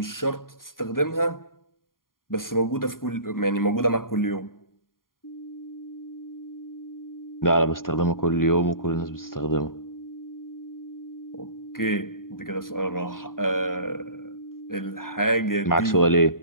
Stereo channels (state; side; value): late; right; 0.91 ms